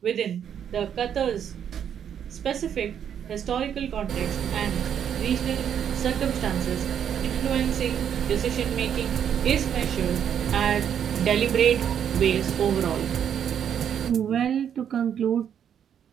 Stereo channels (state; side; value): quieter; left; 8.8 dB